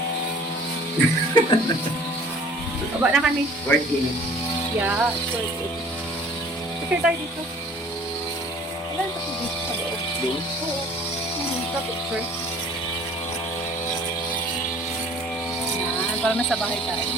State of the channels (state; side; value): normal; both; correlation 0.50